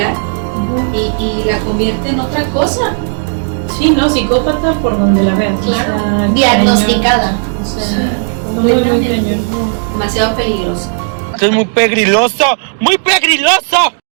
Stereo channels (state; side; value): silent; left; 64 dB below the other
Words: y la convierte en otra cosa. Sí, no, psicópata por donde la veas. Claro. O sea, Diagnosticada. O sea, sí, muy cañón. Demasiado peligroso. Es muy pegriloso, muy pegriloso.